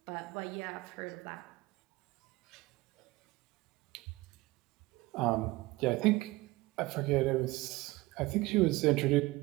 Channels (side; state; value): left; quieter; 20.6 dB